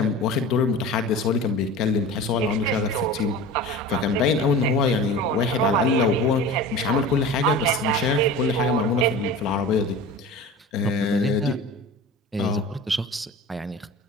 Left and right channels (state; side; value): normal; both; correlation 0.35